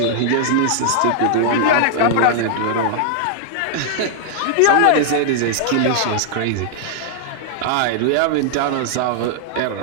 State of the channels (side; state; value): both; different; correlation -0.01